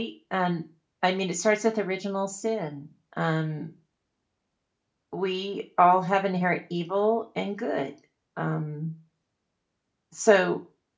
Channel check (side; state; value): both; identical; correlation 1.00